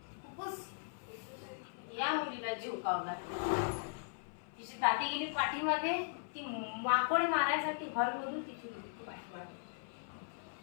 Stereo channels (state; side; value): silent; right; 52 dB below the other